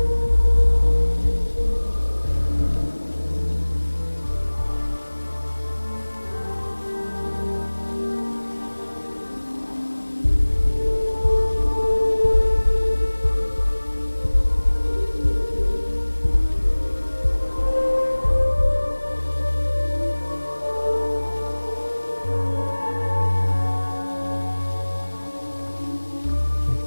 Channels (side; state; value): both; inverted; correlation -1.00